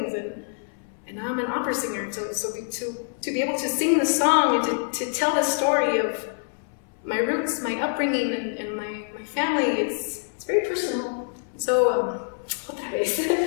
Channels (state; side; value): silent; right; 61 dB below the other